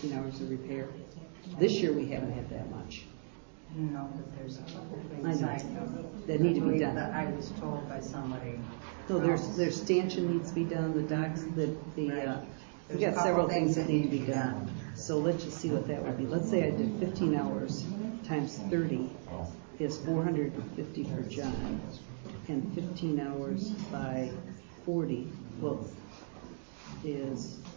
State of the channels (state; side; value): silent; left; digital silence